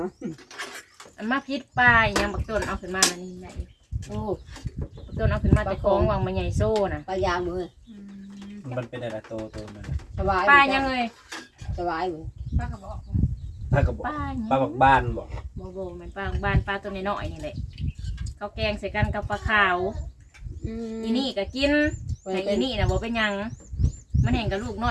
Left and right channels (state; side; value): identical; both; correlation 1.00